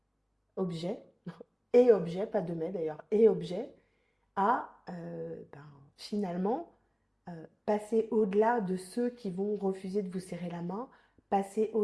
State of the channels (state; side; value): identical; both; correlation 1.00